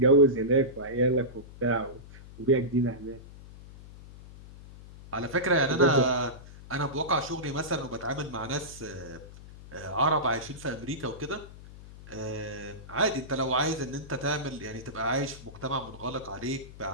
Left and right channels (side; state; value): left; noise; hum, 17 dB below the sound